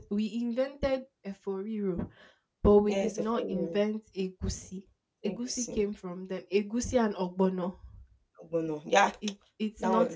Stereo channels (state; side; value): identical; both; correlation 1.00